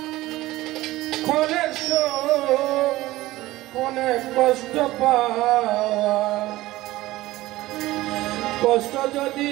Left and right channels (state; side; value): quieter; left; 17.4 dB